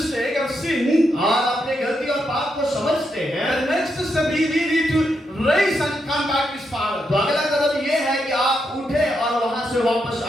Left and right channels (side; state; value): both; normal; correlation 0.82